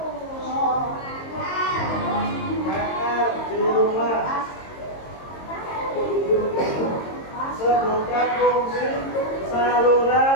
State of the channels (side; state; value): right; late; 22 ms